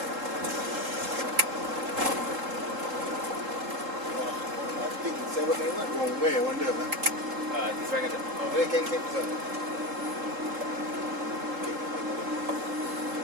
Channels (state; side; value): late; left; 3.7 ms